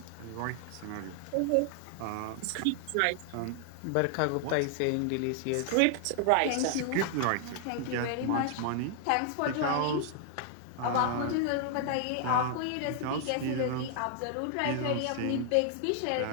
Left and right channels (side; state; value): both; different; correlation 0.00